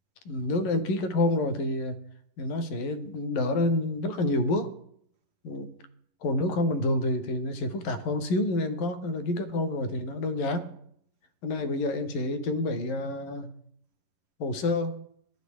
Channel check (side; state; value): right; late; 11 ms